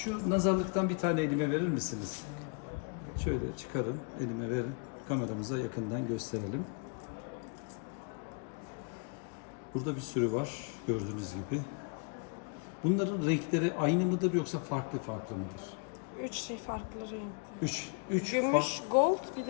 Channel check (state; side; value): quieter; right; 37.5 dB